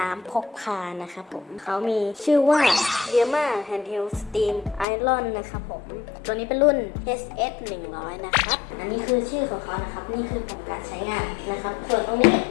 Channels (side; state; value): right; drops out; at 4.9 s